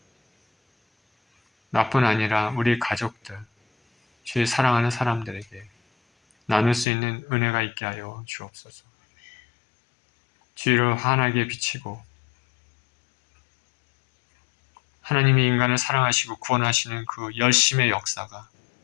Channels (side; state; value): right; drops out; at 6.9 s